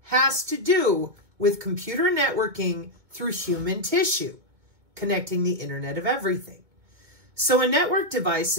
has to do with computer networking through human tissue, connecting the Internet of Everything. So a network device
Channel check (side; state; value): left; late; 2.2 ms